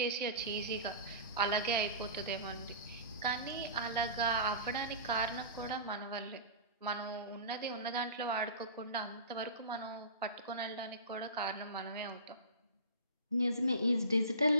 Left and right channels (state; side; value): inverted; both; correlation -0.34